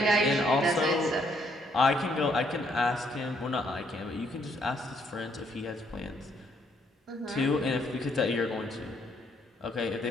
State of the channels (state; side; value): normal; both; correlation 0.70